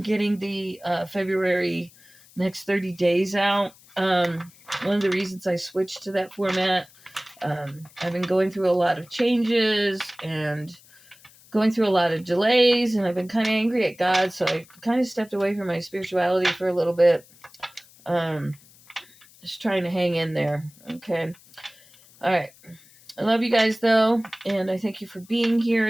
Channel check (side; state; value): left; noise; hiss, 26 dB below the sound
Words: the February next 30 days out. One of the reasons I switched to that format, I've been going through a lot of changes and going through a lot of delays, and I've been kind of angry at God, so I kind of stepped away from my spirituality for a little bit. Just trying to hang in there. Okay. All right. I love you guys, though, and I thank you for being